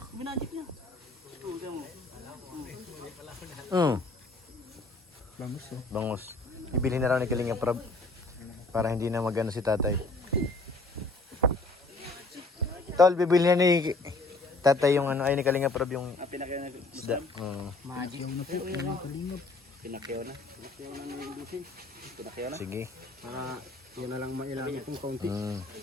Minagic niya. Bangus oh. Bangus. Bibili na raw ni Kalingap para hindi na magano si tatay. Tol, bibili na ni tatay yung ano, ay ni Kalingap yung Pinakyaw na. isda. Magic na po. Kalingap. Pinakyaw na. Pinakyaw na ng ibusin. Pinakyaw na. Sige. Para yun na lang mailangan itong kaunti.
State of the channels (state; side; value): quieter; right; 3.1 dB